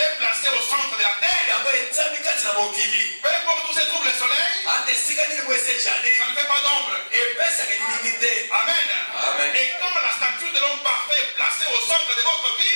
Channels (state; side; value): inverted; both; correlation -1.00